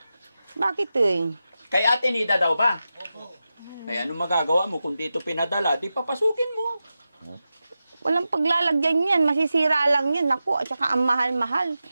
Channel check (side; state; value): both; inverted; correlation -0.92